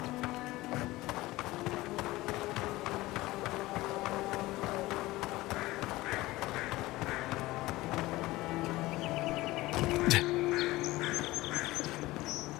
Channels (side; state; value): right; quieter; 18.8 dB